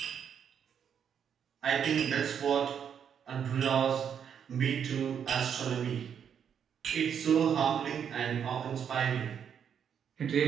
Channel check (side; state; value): left; quieter; 8.0 dB